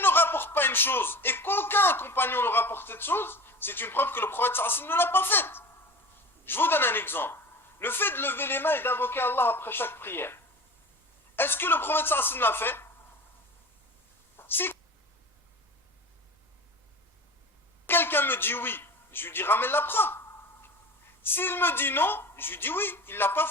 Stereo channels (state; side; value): normal; both; correlation 0.35